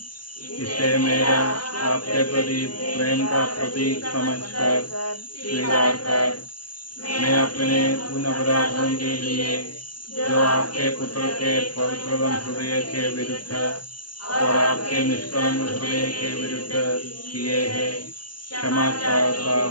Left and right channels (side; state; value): right; late; 0.71 ms